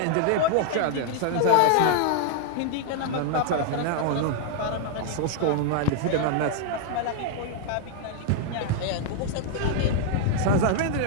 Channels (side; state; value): both; different; correlation 0.00